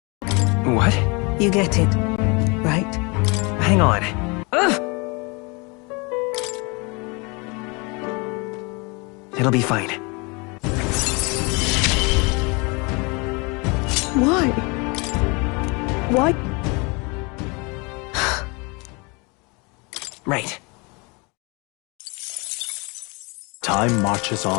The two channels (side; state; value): right; quieter; 29.3 dB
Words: What? You get it, right? Hang on. It'll be fine. Why? Why? Right. Time marches